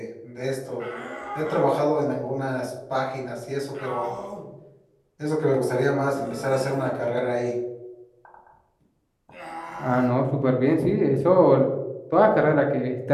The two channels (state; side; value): identical; both; correlation 1.00